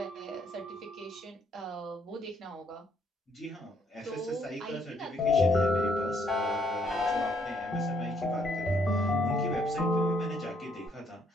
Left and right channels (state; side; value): normal; both; correlation 0.69